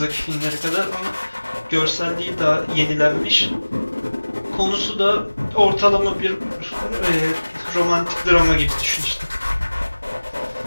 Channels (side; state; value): both; inverted; correlation -1.00